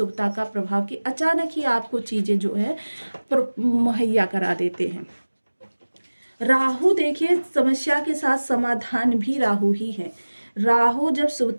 का प्रभाव कि अचानक ही आपको चीज़ें जो है मुहैया करा देते हैं। राहु देखिए समस्या के साथ समाधान भी राहु ही है। राहु जब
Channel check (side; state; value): both; inverted; correlation -1.00